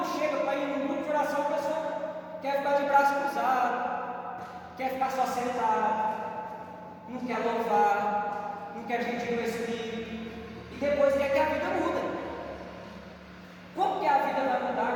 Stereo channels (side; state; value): both; identical; correlation 1.00